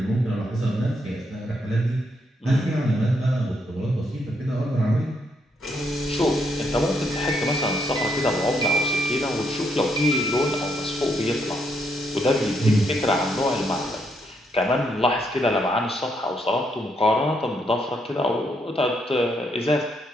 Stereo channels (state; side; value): normal; both; correlation 0.76